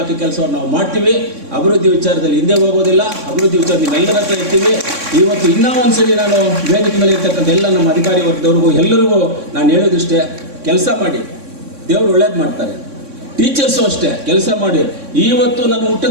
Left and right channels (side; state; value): left; late; 3.6 ms